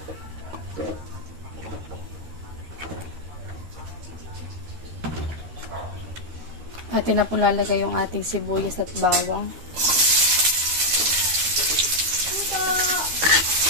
At na po lalagay yung ating sibuyas at bawang.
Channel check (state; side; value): late; left; 13 ms